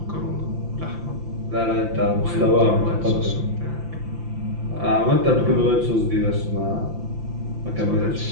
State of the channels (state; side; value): late; left; 5.8 ms